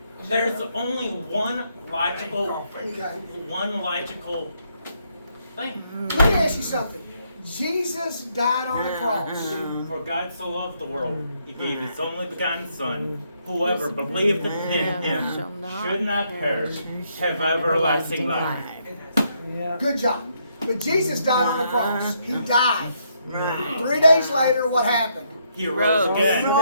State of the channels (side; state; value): both; inverted; correlation -0.74